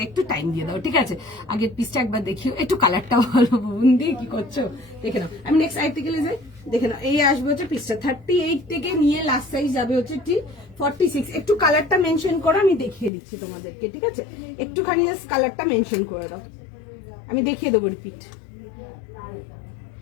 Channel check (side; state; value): right; drops out; at 13.1 s